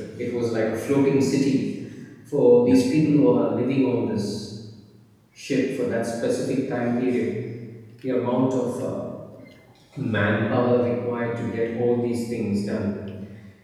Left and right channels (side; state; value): both; identical; correlation 1.00